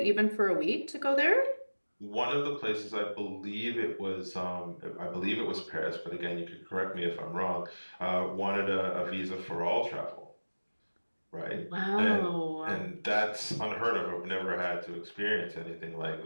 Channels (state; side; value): inverted; both; correlation -1.00